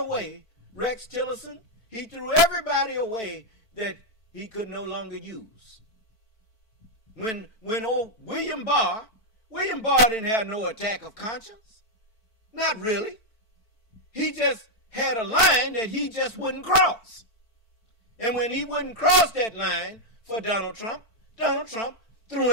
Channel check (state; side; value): late; right; 4.5 ms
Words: Rex Tillerson, he threw everybody away that he could no longer use. When old William Barr didn't have no attack of conscience. Not really. He just had a line that he just wouldn't cross. And when he wouldn't cross that line for Donald Trump threw